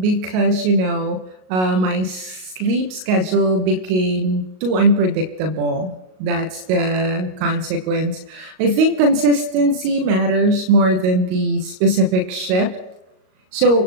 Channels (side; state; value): left; late; 38 ms